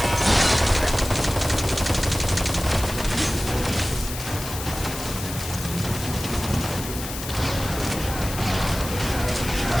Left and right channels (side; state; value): left; noise; hiss, 9 dB below the sound